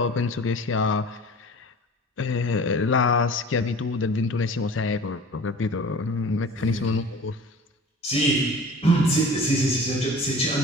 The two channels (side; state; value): both; normal; correlation 0.42